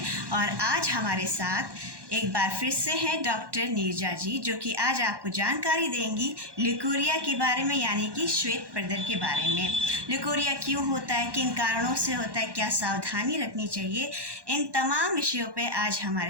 और आज हमारे साथ एक बार फिर से हैं डॉक्टर नीरजा जी, जो कि आज आपको जानकारी देंगी ल्यूकोरिया के बारे में, यानी कि श्वेत प्रदर के बारे में। ल्यूकोरिया क्यों होता है, किन कारणों से होता है, क्या सावधानी रखनी चाहिए, इन तमाम विषयों पे आज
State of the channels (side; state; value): left; late; 1.1 ms